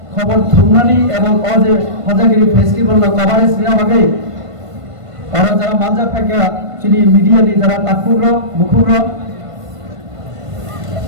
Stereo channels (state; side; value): late; left; 1.5 ms